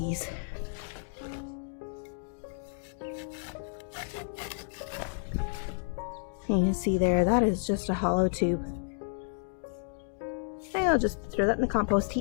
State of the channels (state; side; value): silent; right; digital silence